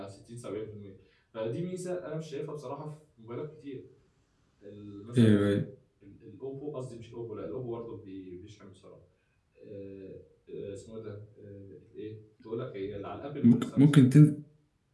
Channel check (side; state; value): both; identical; correlation 1.00